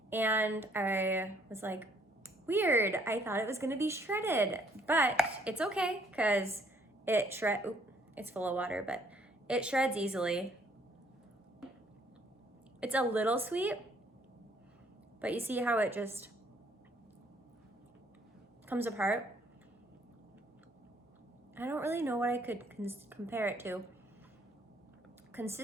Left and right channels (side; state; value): both; normal; correlation 0.65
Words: And I was like, weird, I thought it was gonna be shredded, but it's okay, because it's full of water, but it shreds easily. It's a little sweet, but you see how it just comes apart? I don't really know what I could compare it to